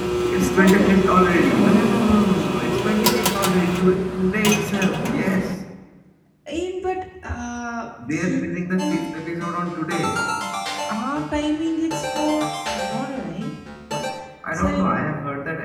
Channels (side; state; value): both; identical; correlation 1.00